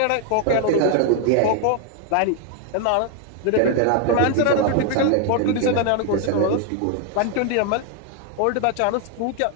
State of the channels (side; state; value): both; different; correlation 0.00